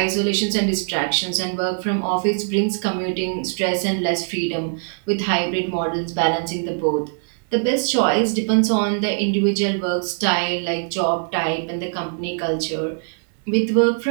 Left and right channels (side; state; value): left; silent; digital silence